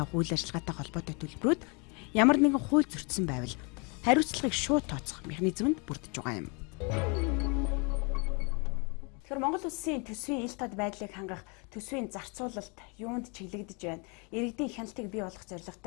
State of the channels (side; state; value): right; quieter; 32.5 dB